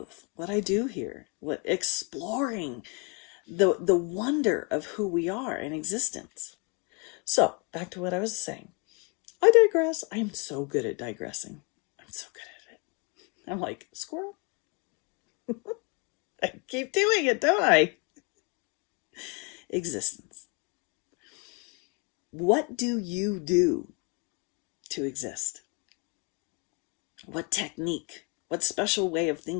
what I do here, exploring the wonder of who we are in existence. So back to what I was saying. I digress. I am so good at digressing. I'm so good at it. I'm like, squirrel. I keep doing it, don't I? Existence. What do you do to exist? What technique? What special way of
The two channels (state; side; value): quieter; right; 32.2 dB